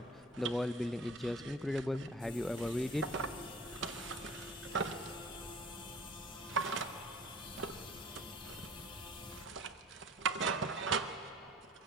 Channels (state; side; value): normal; both; correlation 0.48